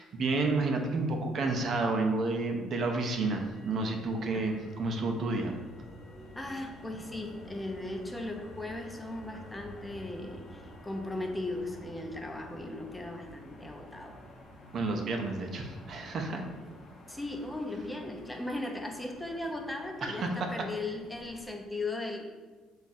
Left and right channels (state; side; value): normal; both; correlation 0.68